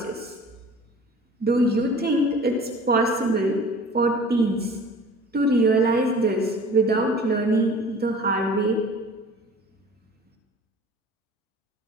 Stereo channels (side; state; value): both; normal; correlation 0.44